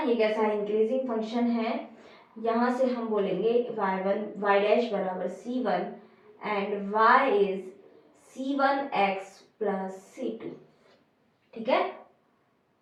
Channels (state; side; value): identical; both; correlation 1.00